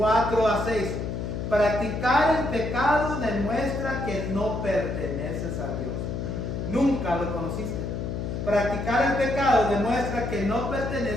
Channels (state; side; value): noise; left; hum, 4 dB below the sound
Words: a 6. Practicar el pecado demuestra que no perteneces a Dios. Nunca lo conociste. Practicar el pecado demuestra que no